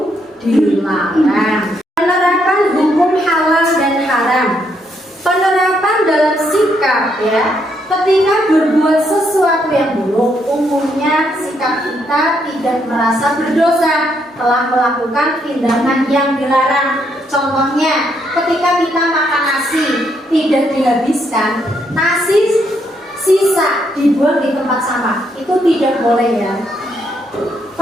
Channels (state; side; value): normal; both; correlation 0.75